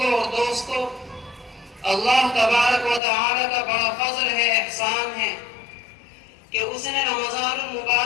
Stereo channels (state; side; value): drops out; right; at 3.0 s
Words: اور دوستوں، اللہ تبارک و تعالی کا بڑا فضل ہے، احسان ہے کہ اس نے رمضان